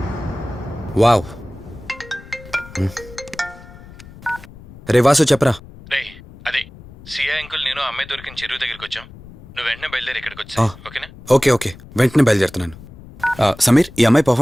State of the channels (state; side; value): noise; left; rumble, 19 dB below the sound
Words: wow. రే వాసు చెప్పరా. రే అదే సిఐ అంకుల్ నేను ఆ అమ్మాయి దొరికిన చెరువు దగ్గరికి వచ్చాం. నువ్వు వెంటనే బయలుదేరి ఇక్కడికి వచ్చా, ఓకేనా? ఓకే వెంటనే బయలుదేరుతున్నాను. సమీర్, ఈ అమ్మాయి